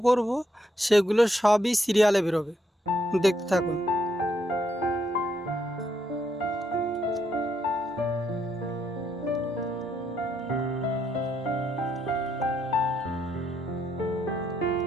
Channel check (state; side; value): normal; both; correlation 0.75